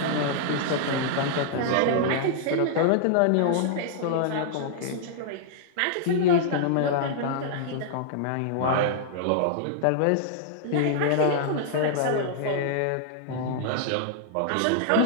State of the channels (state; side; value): different; both; correlation -0.01